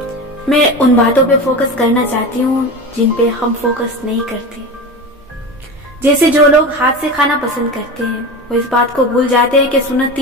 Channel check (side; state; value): both; normal; correlation 0.27